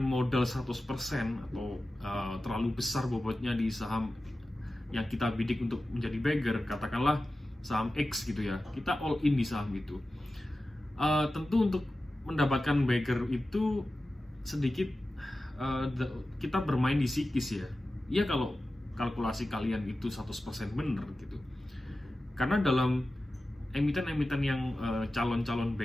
100% atau terlalu besar bobotnya di saham yang kita bidik untuk menjadi beggar, katakanlah saham X gitu ya, kita all in di saham itu. Tentu untuk mendapatkan beggar itu sedikit kita bermain di psikis ya. Iya kalau kalkulasi kalian itu 100% benar gitu. Karena dalam emiten-emiten yang calon-calon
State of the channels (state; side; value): normal; both; correlation 0.94